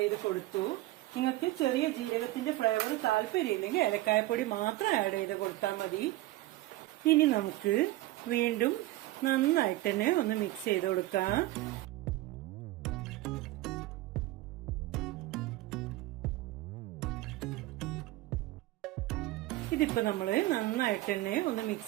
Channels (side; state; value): left; quieter; 17.6 dB